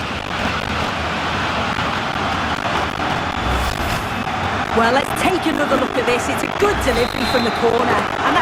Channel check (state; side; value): identical; both; correlation 1.00